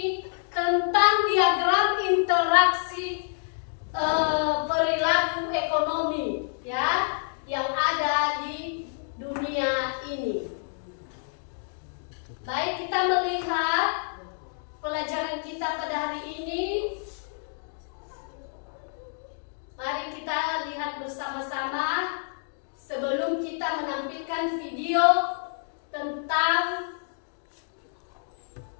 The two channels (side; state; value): right; silent; digital silence